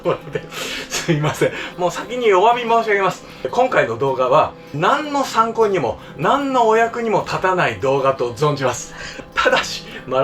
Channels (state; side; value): identical; both; correlation 1.00